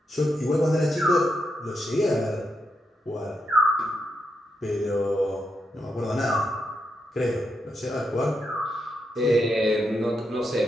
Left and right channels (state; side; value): normal; both; correlation 0.83